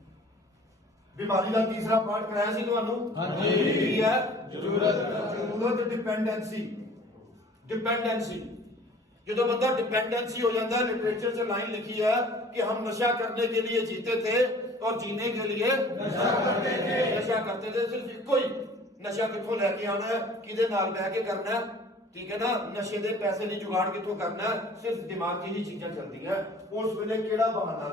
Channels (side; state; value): both; normal; correlation 0.49